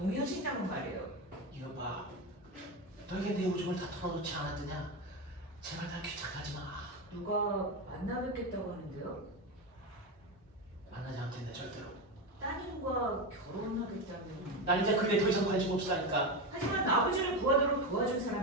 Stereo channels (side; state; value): both; normal; correlation 0.16